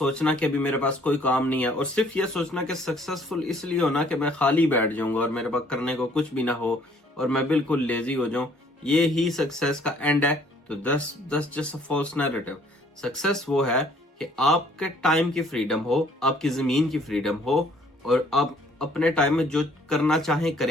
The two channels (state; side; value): normal; both; correlation 0.60